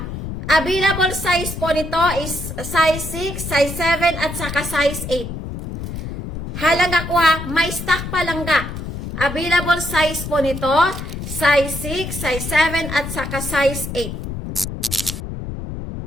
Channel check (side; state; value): left; noise; rumble, 7 dB below the sound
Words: Available size po nito is size 6, size 7, at saka size 8. Halangga ko ha, may stock pa langga. Available size po nito, size 6, size 7, at saka size 8.